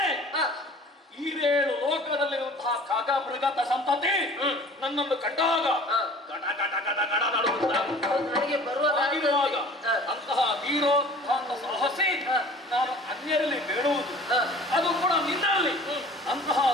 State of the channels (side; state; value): both; normal; correlation 0.47